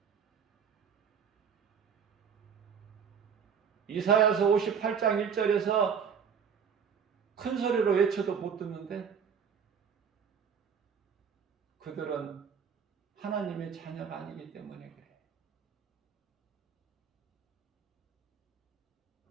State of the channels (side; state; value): left; quieter; 7.0 dB